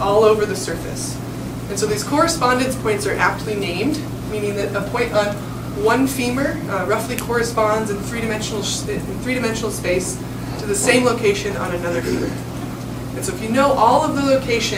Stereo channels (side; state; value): both; identical; correlation 1.00